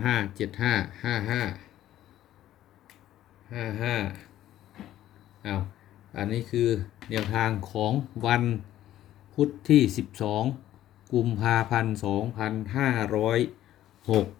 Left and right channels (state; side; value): quieter; right; 13.0 dB